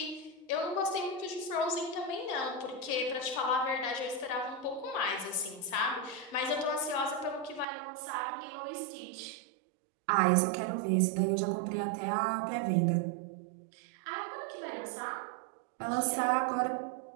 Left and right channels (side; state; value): left; drops out; at 7.7 s